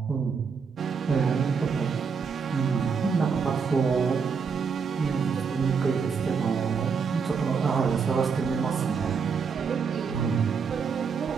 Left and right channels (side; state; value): left; quieter; 5.8 dB